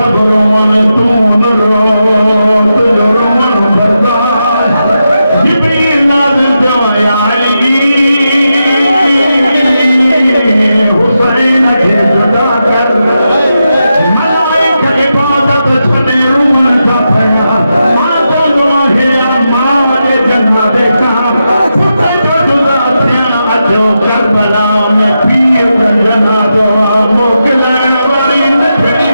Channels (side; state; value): both; inverted; correlation -0.87